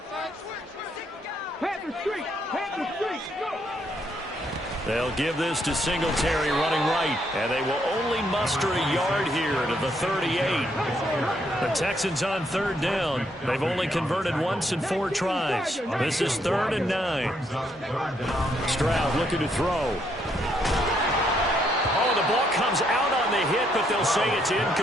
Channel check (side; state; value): both; normal; correlation 0.73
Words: They'll give this to Singletary running right, and they will only muster a yard here to the 38. The Texans on third down. They've only converted once in 4 tries. This is 3rd and 9. Stroud looking to throw. Oh, the ball comes out on the hit, but they'll say it's